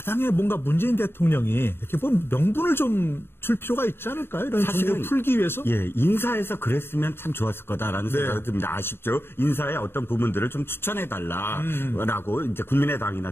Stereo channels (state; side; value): late; right; 0.11 ms